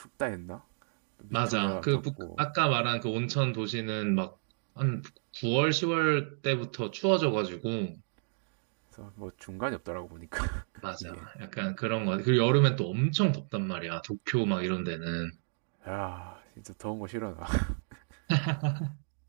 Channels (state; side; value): silent; left; digital silence